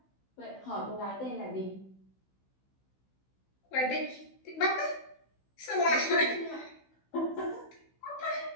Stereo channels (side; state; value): right; late; 16 ms